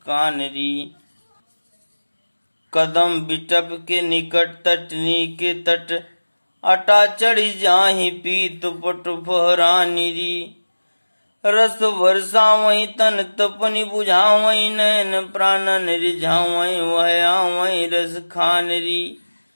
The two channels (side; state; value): both; inverted; correlation -1.00